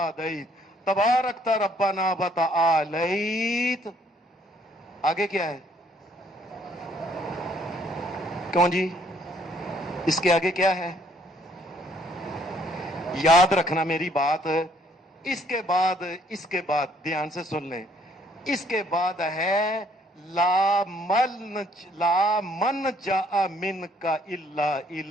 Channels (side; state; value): both; normal; correlation 0.64